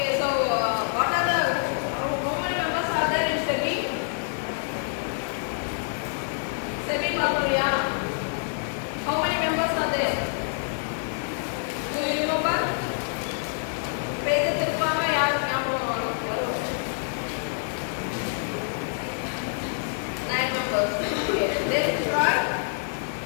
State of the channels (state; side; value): silent; right; 60 dB below the other